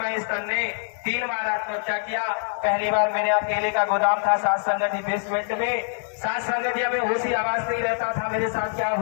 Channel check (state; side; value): silent; right; digital silence